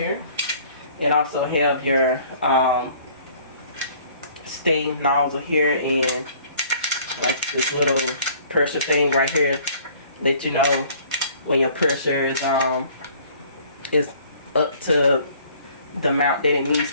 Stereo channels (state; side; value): inverted; both; correlation -0.55